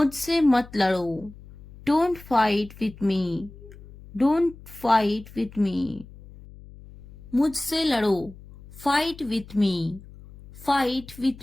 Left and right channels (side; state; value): left; noise; hum, 19 dB below the sound